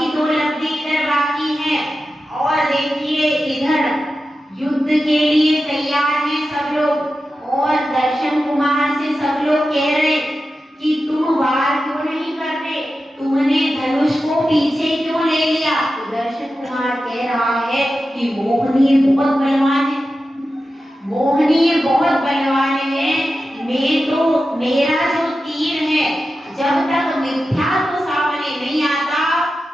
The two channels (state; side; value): normal; both; correlation 0.92